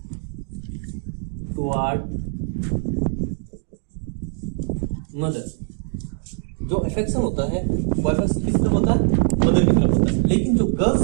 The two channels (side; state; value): left; silent; 57 dB below the other